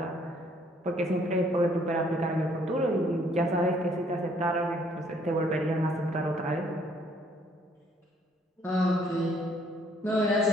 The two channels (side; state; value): both; normal; correlation 0.64